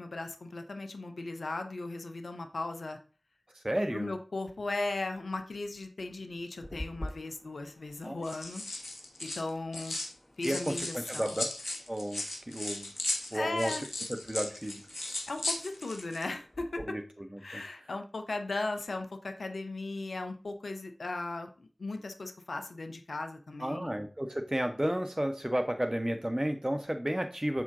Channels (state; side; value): normal; both; correlation 0.97